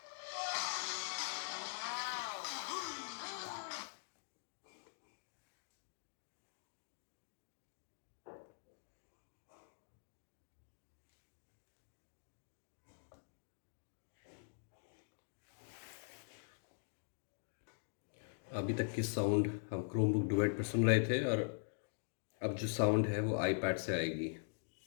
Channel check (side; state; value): right; silent; digital silence